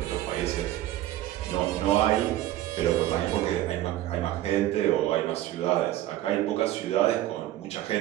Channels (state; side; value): quieter; left; 14.4 dB